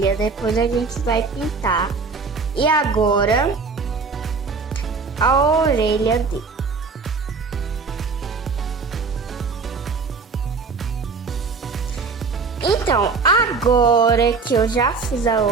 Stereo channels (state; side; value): quieter; left; 4.7 dB